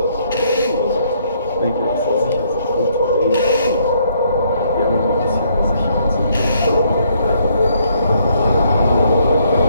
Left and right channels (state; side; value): inverted; both; correlation -0.69